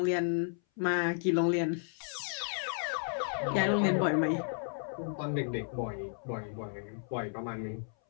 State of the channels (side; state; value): right; silent; 56 dB below the other